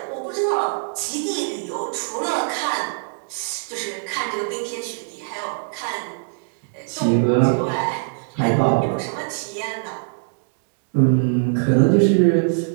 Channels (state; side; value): silent; left; digital silence